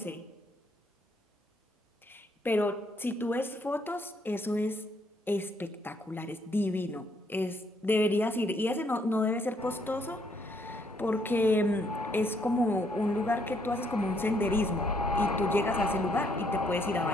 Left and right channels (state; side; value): normal; both; correlation 0.70